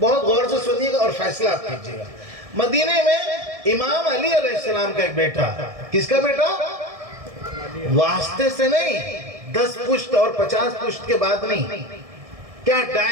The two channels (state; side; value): late; left; 1.6 ms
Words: غور سے سنیے گا اور فیصلہ آپ کیجیے گا. مدینے میں امام علی علیہ السلام کا ایک بیٹا. کس کا بیٹا؟ واسطے سے نہیں، 10 پشت اور 50 پشت کے بعد نہیں. کیا